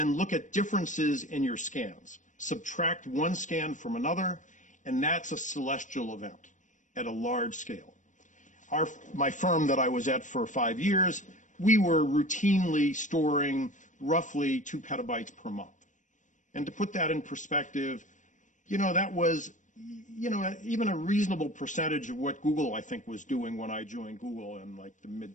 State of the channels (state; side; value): late; right; 0.36 ms